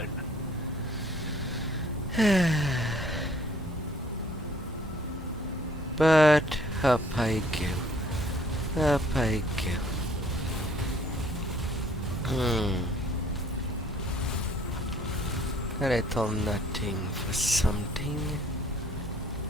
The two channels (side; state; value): both; normal; correlation 0.59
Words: But up I go. Up I go. A little nothing for something.